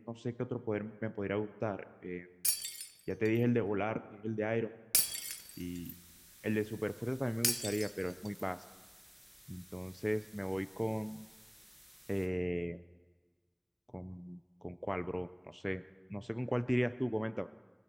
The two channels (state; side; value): identical; both; correlation 1.00